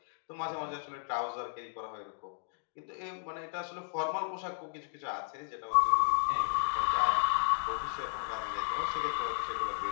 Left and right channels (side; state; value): right; silent; digital silence